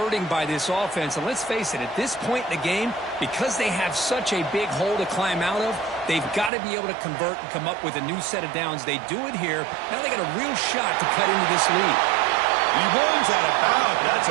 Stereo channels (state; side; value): drops out; left; at 6.5 s